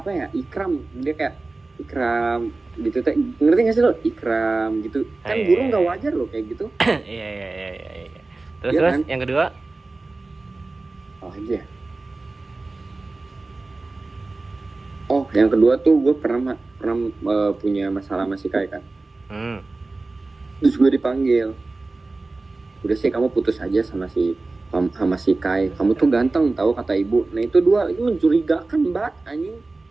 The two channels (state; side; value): quieter; left; 3.4 dB